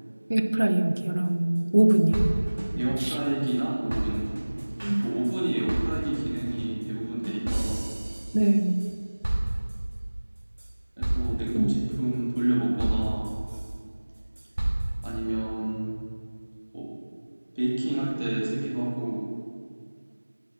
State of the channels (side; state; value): both; inverted; correlation -1.00